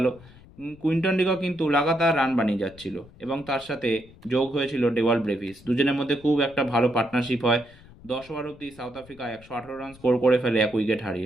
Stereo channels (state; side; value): noise; left; rumble, 23 dB below the sound